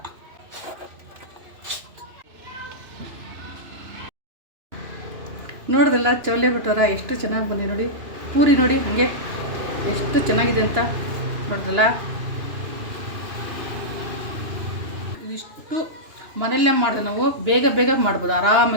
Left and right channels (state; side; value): late; left; 2.9 ms